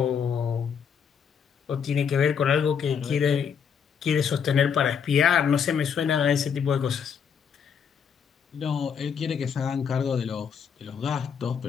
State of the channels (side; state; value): right; quieter; 7.1 dB